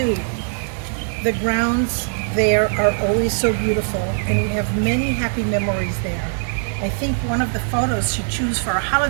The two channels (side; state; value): left; silent; 56 dB below the other